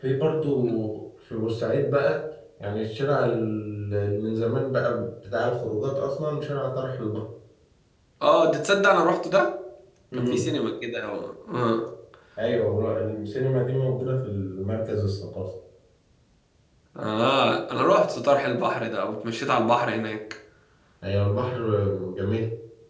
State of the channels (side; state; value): both; identical; correlation 1.00